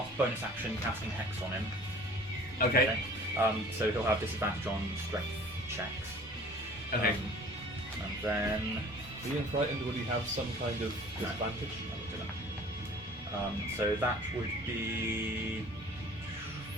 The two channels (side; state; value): both; normal; correlation 0.47